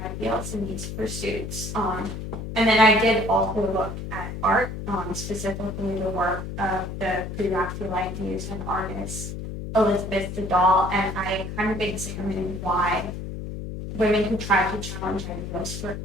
ideals in these pursuits. And then I did also look at art, specifically the work of the pre-Raphaelite muse and artist Elizabeth Dahl, and I kind of examined why women who tried to challenge ideals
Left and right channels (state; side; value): noise; left; hum, 7 dB below the sound